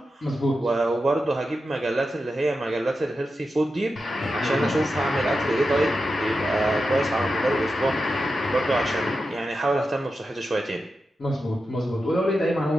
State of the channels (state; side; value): normal; both; correlation 0.90